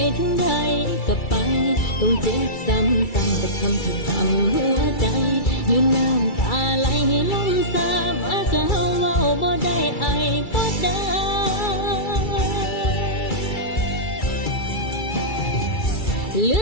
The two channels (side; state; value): right; late; 2.3 ms